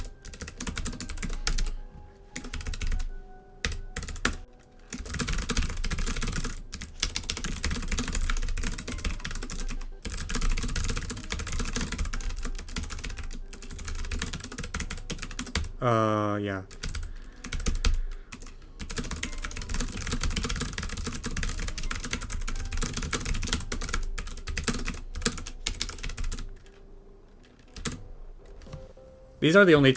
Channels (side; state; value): both; identical; correlation 1.00